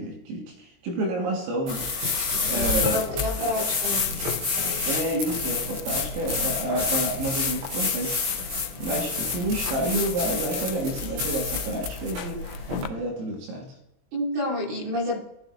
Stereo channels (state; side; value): late; left; 23 ms